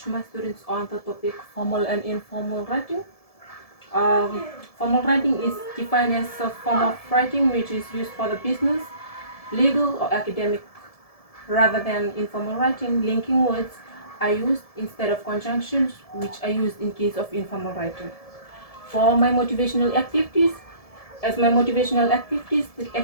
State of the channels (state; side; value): late; right; 1.7 ms